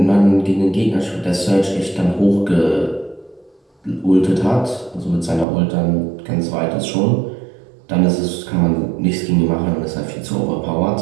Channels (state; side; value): drops out; left; at 5.5 s